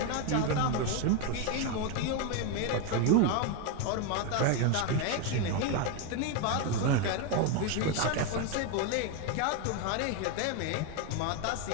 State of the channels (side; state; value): both; different; correlation 0.02